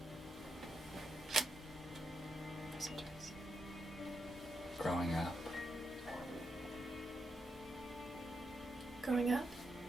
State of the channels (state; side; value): normal; both; correlation 0.83